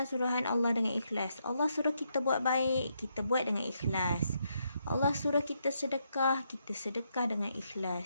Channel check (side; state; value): both; inverted; correlation -0.78